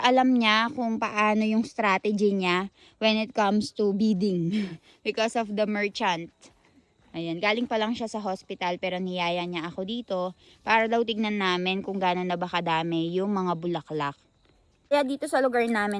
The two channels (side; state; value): both; identical; correlation 1.00